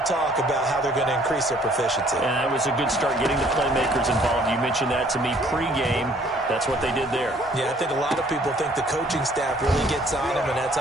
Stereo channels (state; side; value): normal; both; correlation 0.60